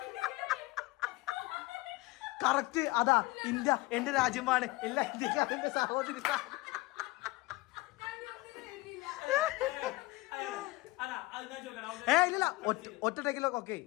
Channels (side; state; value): right; quieter; 21.6 dB